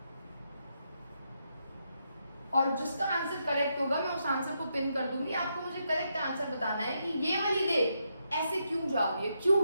और जिसका आंसर करेक्ट होगा मैं उस आंसर को पिन कर दूंगी। आपको मुझे करेक्ट आंसर बताना है कि ये वाली रे ऐसे क्यों जा रही है,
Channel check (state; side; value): inverted; both; correlation -0.81